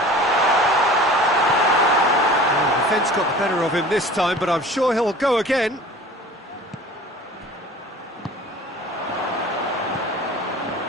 Oh, the defence got the better of him this time, but I'm sure he'll go again.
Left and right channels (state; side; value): normal; both; correlation 0.43